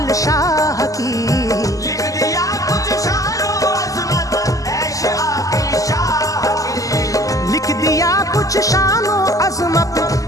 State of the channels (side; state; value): right; late; 0.17 ms